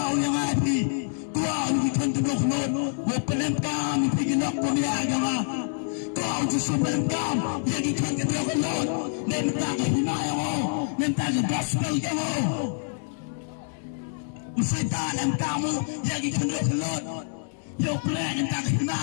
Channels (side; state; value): right; silent; digital silence